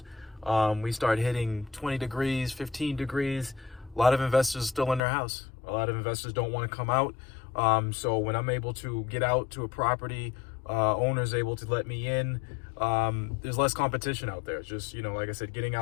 We start hitting 20 degrees, 15 degrees. A lot of investors are still in their house. A lot of investors don't want to come out. So when I'm able to get out to a property, owners able to let me in, there's less competition out there. It's just, like I said, getting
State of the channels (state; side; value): drops out; right; at 5.0 s